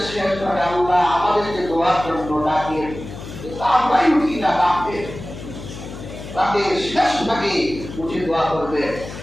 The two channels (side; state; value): left; noise; hum, 12 dB below the sound